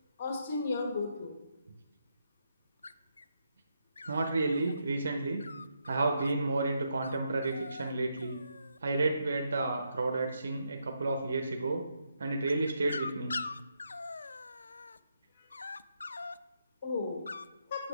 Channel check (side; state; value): both; inverted; correlation -0.80